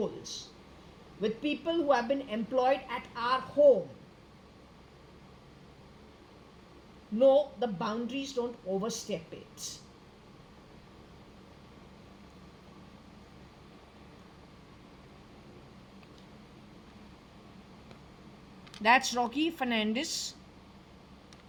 with people who have been employed at our home. No, the boundaries, don't overstep it. That's Rocky Fernandez.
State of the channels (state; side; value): identical; both; correlation 1.00